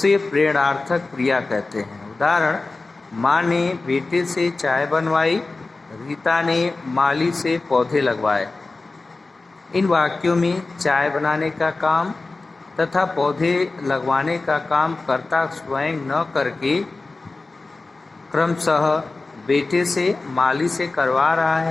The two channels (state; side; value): quieter; right; 3.5 dB